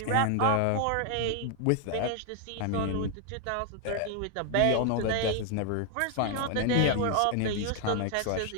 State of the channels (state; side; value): different; both; correlation 0.00